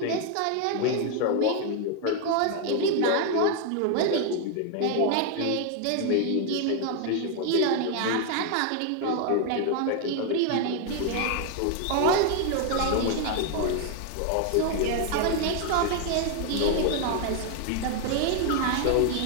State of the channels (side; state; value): both; different; correlation 0.00